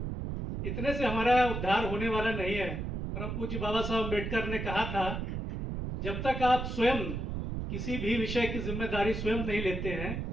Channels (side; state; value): right; noise; rumble, 4 dB below the sound